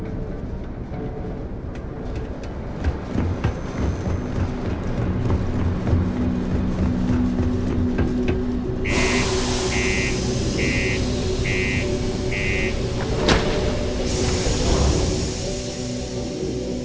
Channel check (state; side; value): identical; both; correlation 1.00